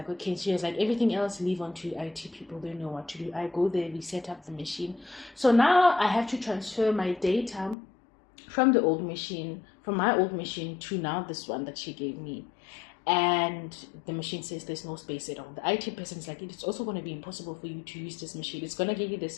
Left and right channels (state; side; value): drops out; right; at 7.8 s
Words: okay. She was like, everything else leave on to IT people. They know what to do. I go there, we set up the machine. So now I have to transfer my data from the old machine, from my old machine to now this one that she gave me. And the machine says there's no space at all. The IT person is like, it's also going to be impossible for you to use this machine. It's going to give you the